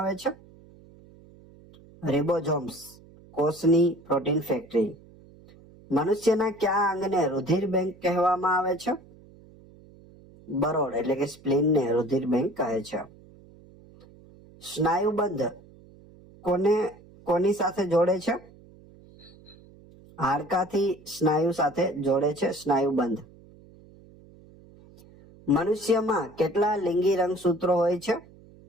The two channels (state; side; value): noise; right; hum, 24 dB below the sound